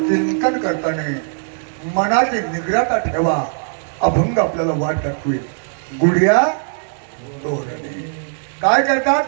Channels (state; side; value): silent; left; digital silence